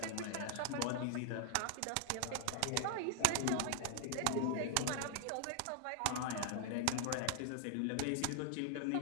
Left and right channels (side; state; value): both; different; correlation 0.00